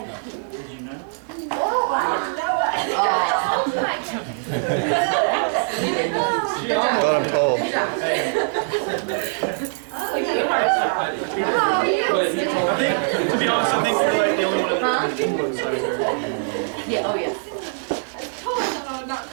Did you know? Thought I'm cold. I think, to be honest, I think you're like the only one that Yeah, oh yeah. Oh, no, not so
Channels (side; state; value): left; silent; 64 dB below the other